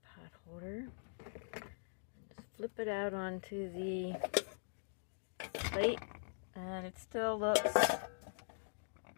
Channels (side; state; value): right; silent; digital silence